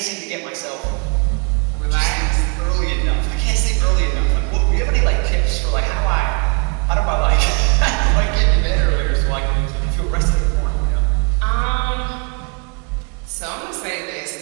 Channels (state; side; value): quieter; left; 34.1 dB